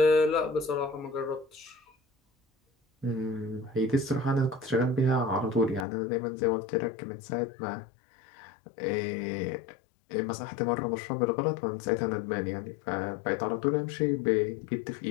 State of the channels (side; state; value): right; drops out; at 5.9 s